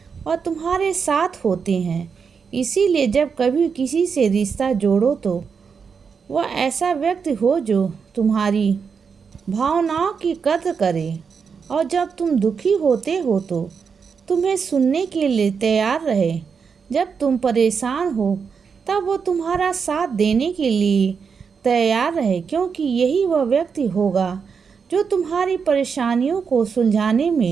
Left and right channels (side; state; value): left; quieter; 6.0 dB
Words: वह तुम्हारे साथ होते हैं। इसीलिए जब कभी किसी से रिश्ता जोड़ो तो वह ऐसा व्यक्ति हो जो तुम्हारी भावनाओं की कद्र करे, और जब तुम दुखी होते हो तो तुम्हें सुनने के लिए तैयार रहे। जब तुम परेशान हो तब वो तुम्हारा साथ देने के लिए तैयार रहे, क्योंकि यही वह व्यक्ति होगा जो तुम्हारी परेशानियों को सुलझाने